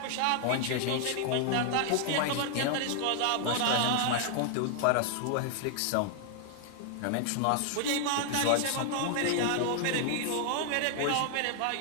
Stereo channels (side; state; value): both; different; correlation 0.00